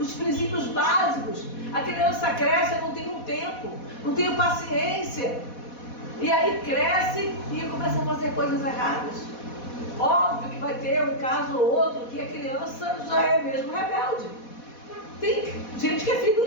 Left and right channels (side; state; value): right; late; 4.1 ms